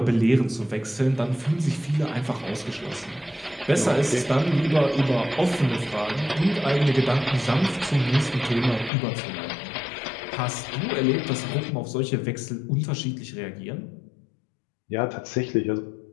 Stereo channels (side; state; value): right; drops out; at 8.9 s